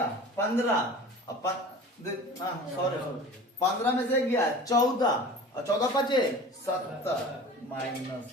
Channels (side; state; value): both; normal; correlation 0.40